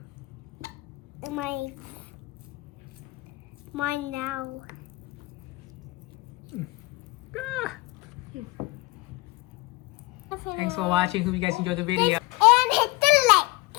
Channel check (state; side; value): quieter; right; 22.7 dB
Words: Mine now. Ah. Thanks for watching. Hope you guys enjoyed the video.